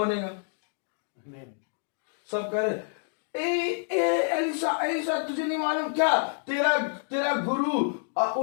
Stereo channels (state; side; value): silent; right; digital silence